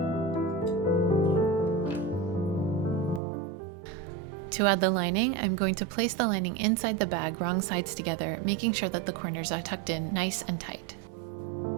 To add the lining, I'm going to place the lining inside the bag wrong sides together, making sure that the corners are tucked in nice and tight.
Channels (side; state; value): left; drops out; at 3.2 s